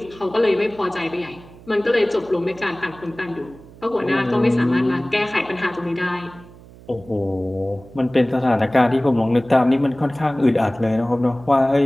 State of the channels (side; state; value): right; noise; hum, 21 dB below the sound